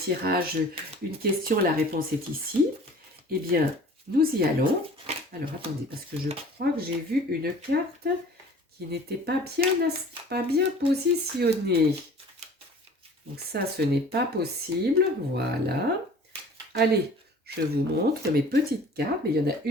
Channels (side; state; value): both; normal; correlation 0.46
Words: une question, la réponse est ici. Eh bien, nous y allons. Alors, attendez, parce que je crois que j'ai vu une carte qui n'était pas bien positionnée. Donc ça, ce n'est pas possible. Voilà. Allez, je vous montre mes petites cartes. Mais il y en a